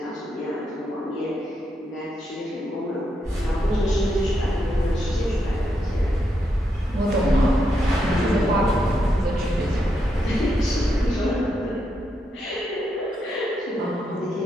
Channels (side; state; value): both; normal; correlation 0.82